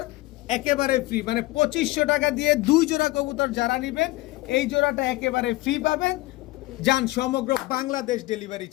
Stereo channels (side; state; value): right; quieter; 19.7 dB